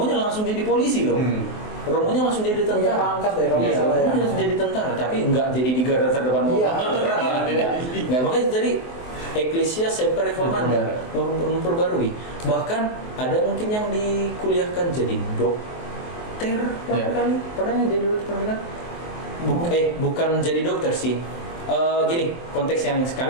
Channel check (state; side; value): late; right; 23 ms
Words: langsung jadi polisi loh. Romonya langsung jadi Punya tentara. pangkat ya, kalau Iya, nggak salah ya. Romonya langsung jadi tentara, tapi nggak jadi di garda terdepan mau Iya. perang ya. Nggak, makanya jadi Ecclesia Semper Reformanda memperbarui. Bahkan ada mungkin yang dikuliahkan jadi dokter, kali pernah jadi dokter kan? Bukan jadi dokter sih. Gini, konteks yang